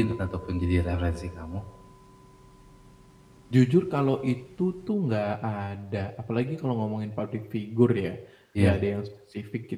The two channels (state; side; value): identical; both; correlation 1.00